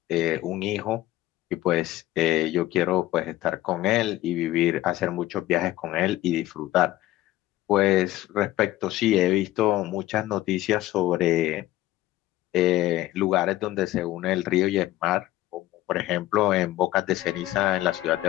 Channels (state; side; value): quieter; right; 15.4 dB